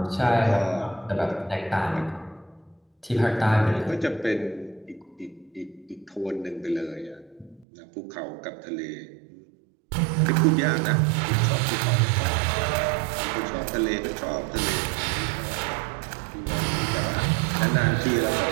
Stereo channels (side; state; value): left; drops out; at 7.7 s